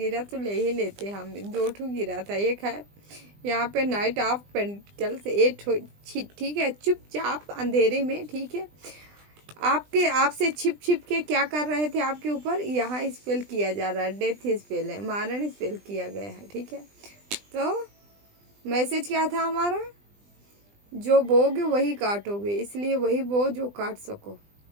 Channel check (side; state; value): left; late; 20 ms